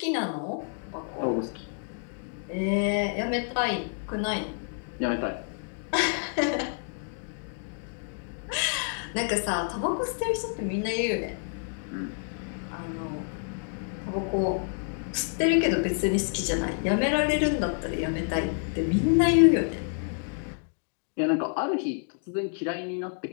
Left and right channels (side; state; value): right; silent; 59 dB below the other